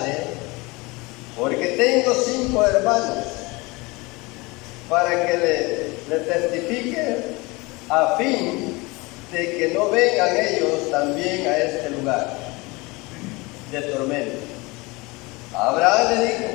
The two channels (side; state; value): right; quieter; 24.3 dB